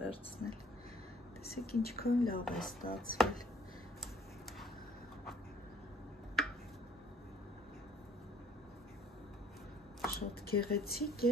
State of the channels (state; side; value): normal; both; correlation 0.59